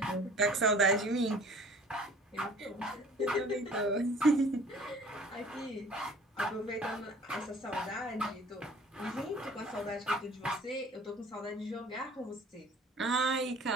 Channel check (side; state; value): both; normal; correlation 0.50